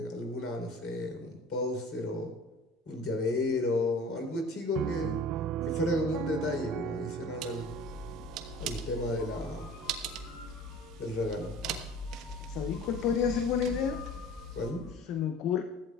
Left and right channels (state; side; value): normal; both; correlation 0.43